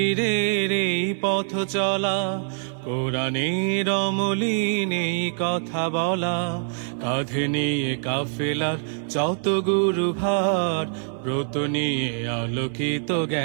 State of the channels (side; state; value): left; silent; 62 dB below the other